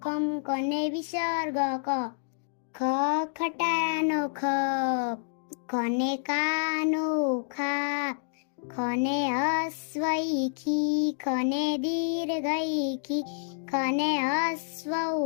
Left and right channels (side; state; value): right; silent; digital silence